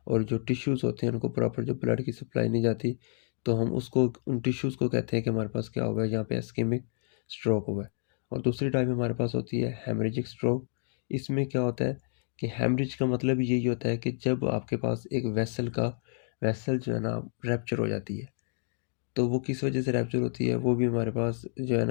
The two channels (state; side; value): silent; right; 58 dB below the other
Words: और जो टिश्यूज़ होते हैं उनको प्रॉपर जो ब्लड की सप्लाई नहीं जाती, तो हम उसको उन टिश्यूज़ को कहते हैं कि हमारे पास क्या हुआ है, यहाँ पे इस्केमिक स्ट्रोक हुआ है। और दूसरी टाइप हमारे पास होती है हेमरेजिक स्ट्रोक। इसमें क्या होता है कि हेमरेज का मतलब यही होता है कि जब आपके पास एक वेसल जो है ना रैप्चर हो जाती है। तो वो किस वजह से रैप्चर होती है, वो भी हमारे पास जो है